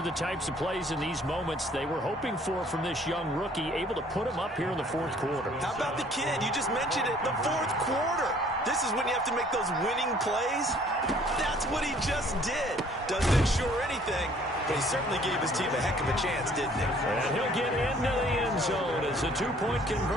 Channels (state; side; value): normal; both; correlation 0.57